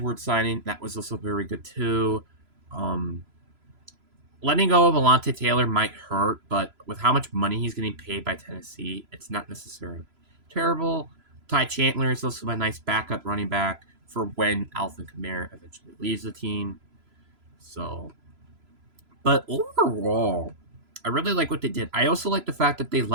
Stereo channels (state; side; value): late; left; 3.0 ms